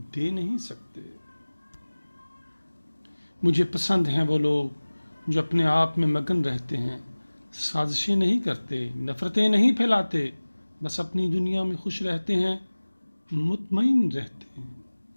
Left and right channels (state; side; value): inverted; both; correlation -1.00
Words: नहीं सकते। मुझे पसंद हैं वो लोग जो अपने आप में मगन रहते हैं, साजिशें नहीं करते, नफ़रतें नहीं फैलाते, बस अपनी दुनिया में खुश रहते हैं, मुतमईन रहते हैं।